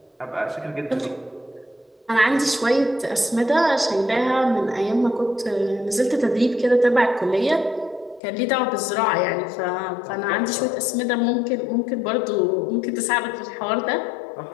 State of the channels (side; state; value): right; drops out; at 8.2 s